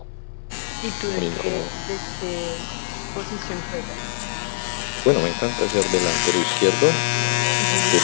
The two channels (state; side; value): silent; right; 59 dB below the other